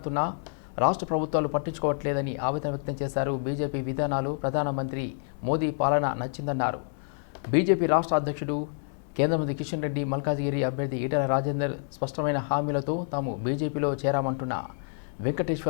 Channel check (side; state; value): right; silent; 59 dB below the other